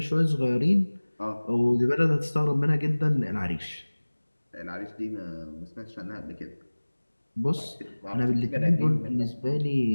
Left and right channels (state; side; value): inverted; both; correlation -1.00